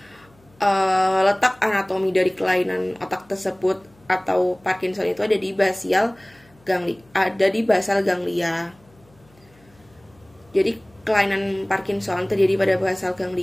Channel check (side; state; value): left; noise; hum, 30 dB below the sound